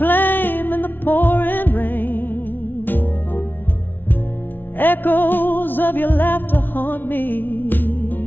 in the pouring rain. Echoes of your laughter haunt me,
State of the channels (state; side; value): late; right; 0.092 ms